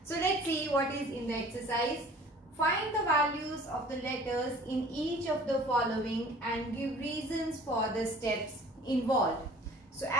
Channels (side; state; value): both; normal; correlation 0.48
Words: So let's see what is in the exercise. Find the values of the letters in each of the following and give reasons for the steps involved. So